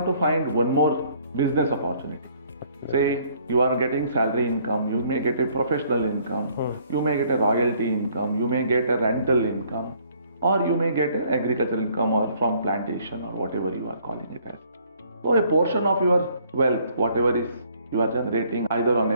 to find one more business opportunity. Say you are getting salary income, you may get a professional income, you may get a royalty income, you may get a rental income, or you may get an agricultural income or from plantation or whatever you are calling it as. So a portion of your wealth, whatever is you are generating either on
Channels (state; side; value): inverted; both; correlation -0.63